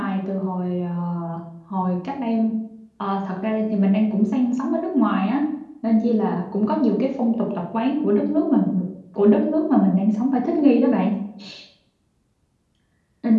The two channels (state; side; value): identical; both; correlation 1.00